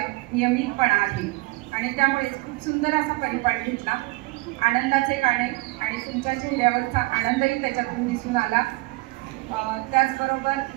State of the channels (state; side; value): quieter; left; 22.9 dB